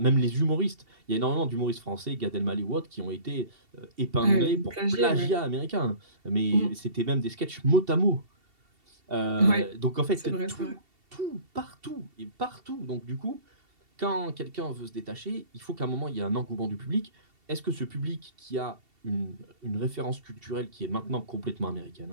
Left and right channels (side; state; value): left; late; 2.7 ms